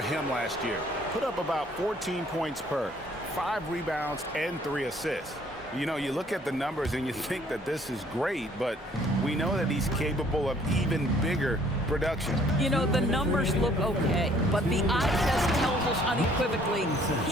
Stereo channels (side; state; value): both; normal; correlation 0.60